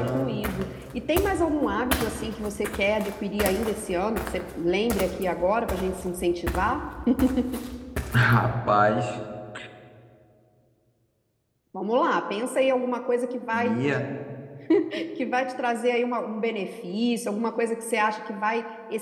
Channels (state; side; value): identical; both; correlation 1.00